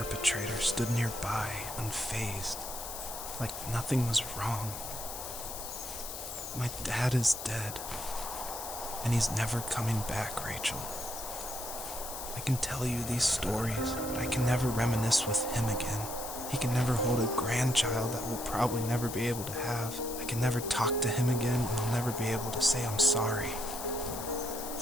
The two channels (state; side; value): noise; left; hiss, 8 dB below the sound